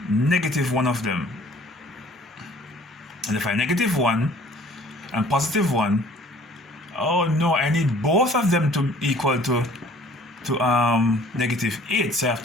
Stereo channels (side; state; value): both; normal; correlation 0.54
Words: negative one of them. And if I negative 1 and positive 1, oh no, I need both of them to equal to negative 8. So I have